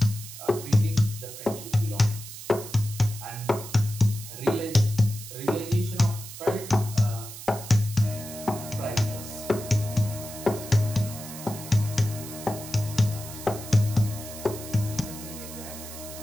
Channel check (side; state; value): right; noise; hiss, 12 dB below the sound